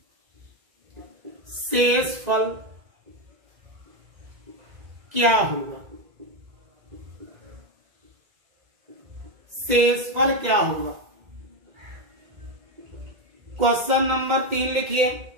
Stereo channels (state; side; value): late; left; 2.0 ms